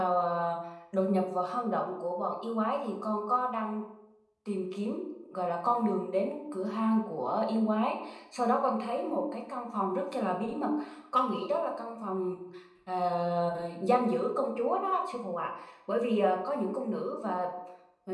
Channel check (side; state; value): both; identical; correlation 1.00